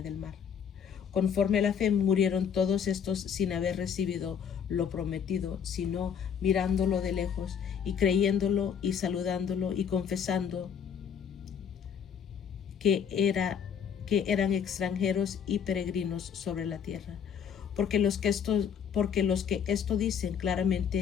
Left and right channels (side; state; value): right; quieter; 7.6 dB